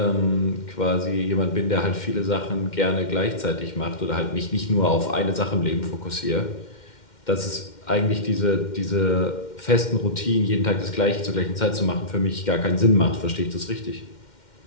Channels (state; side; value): late; right; 2.1 ms